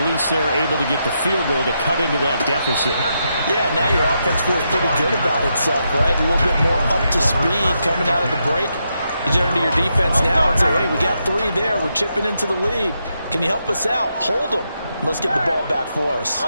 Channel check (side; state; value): both; inverted; correlation -0.82